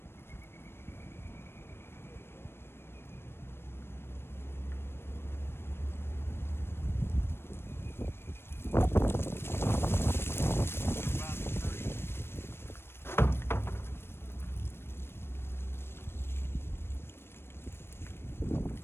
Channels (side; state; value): right; late; 0.12 ms